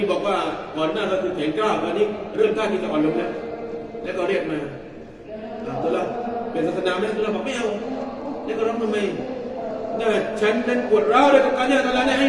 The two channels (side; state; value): both; identical; correlation 1.00